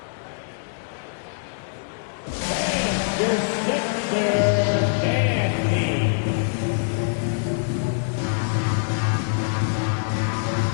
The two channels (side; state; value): right; silent; digital silence